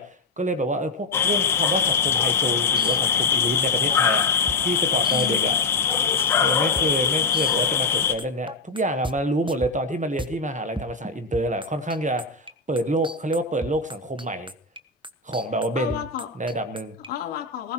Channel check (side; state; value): right; quieter; 3.6 dB